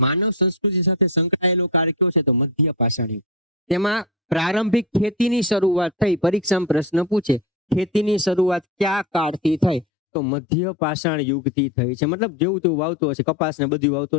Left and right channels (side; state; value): right; drops out; at 9.9 s